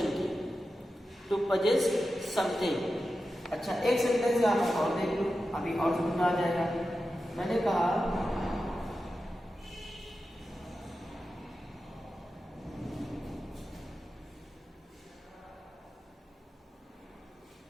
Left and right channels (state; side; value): normal; both; correlation 0.92